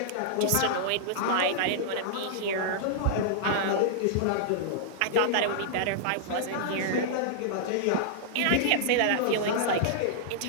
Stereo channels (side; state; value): both; different; correlation -0.02